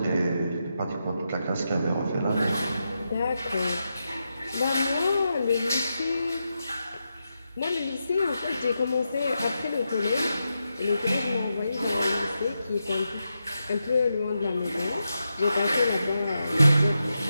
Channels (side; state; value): both; inverted; correlation -0.87